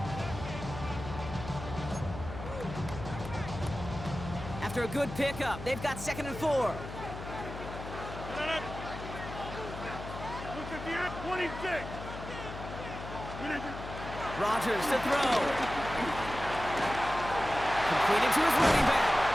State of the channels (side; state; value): left; noise; hum, 10 dB below the sound